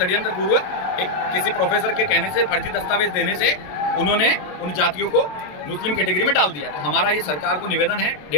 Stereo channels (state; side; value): late; right; 27 ms